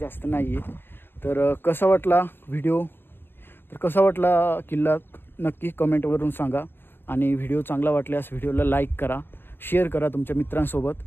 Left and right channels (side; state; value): right; late; 0.099 ms